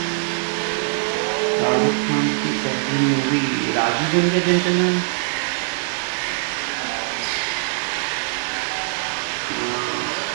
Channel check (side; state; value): left; silent; digital silence